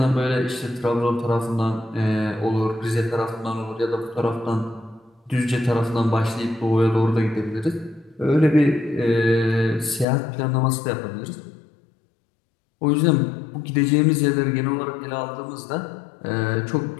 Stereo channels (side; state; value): right; drops out; at 10.1 s